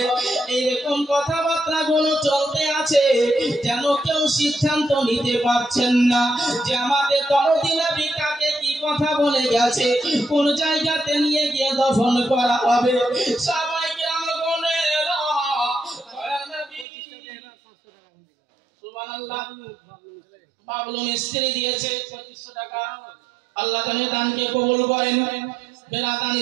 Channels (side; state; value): left; drops out; at 16.9 s